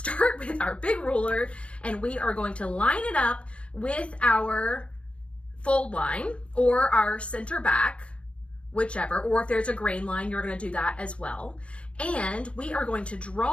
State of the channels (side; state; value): right; late; 0.061 ms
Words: with our big ruler and we are going to line it up with our fold line or our center back, whichever, or if there's a grain line, you're going to do that as well. And we are going to